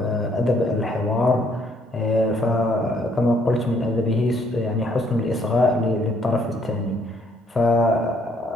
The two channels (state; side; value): normal; both; correlation 0.67